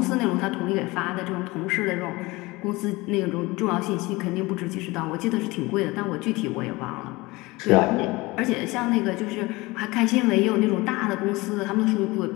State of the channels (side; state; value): right; quieter; 22.2 dB